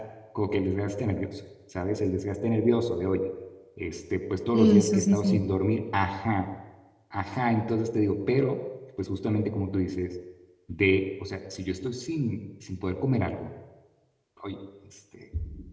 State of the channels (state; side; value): identical; both; correlation 1.00